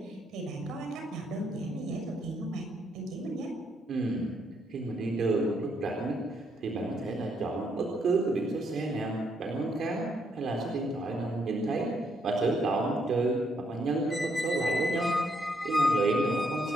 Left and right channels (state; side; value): normal; both; correlation 0.74